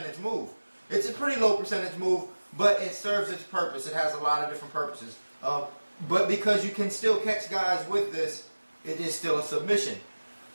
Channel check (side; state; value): both; inverted; correlation -1.00